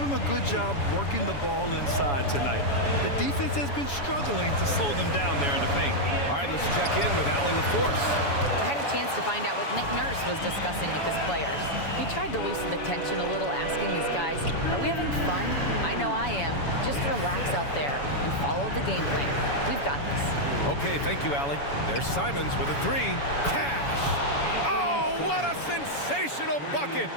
a good job working the ball inside tonight. The defense has been struggling to slow them down there in the paint. All right, let's check in with Allie LaForce. I had a chance to find out what Nick Nurse was discussing with his players. He tried to loosen the tension a little, asking his guys, are we having fun? I know I am. Just relax out there and follow the game plan. We've got this. Okay, thank you, Allie. There's Simons with a 3. Cash! Oh, what a sensational bucket!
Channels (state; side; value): late; right; 7.1 ms